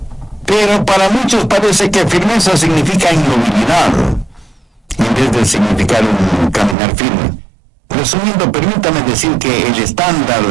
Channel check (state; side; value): drops out; left; at 6.8 s